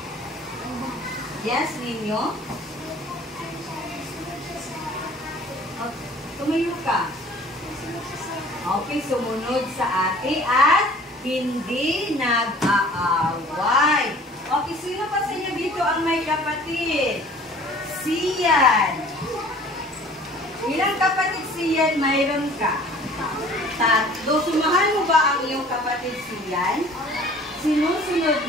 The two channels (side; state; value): both; normal; correlation 0.49